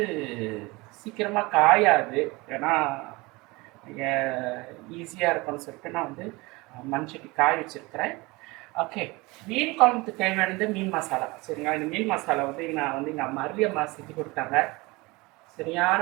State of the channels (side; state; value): left; quieter; 23.6 dB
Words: சீக்கிரமாக காயாது. ஏன்னா ஈஸியாக இருக்கும்னு சொல்லிட்டு நான் வந்து மண் சட்டி காய வச்சுருக்கிறேன். ஓகே, மீன் குழம்புக்கு தேவையானது மீன் மசாலா. சரிங்களா? இந்த மீன் மசாலா வந்து நான் வந்து எங்கள் மரளி அம்மா செஞ்சு கொடுத்தாங்க. சரியான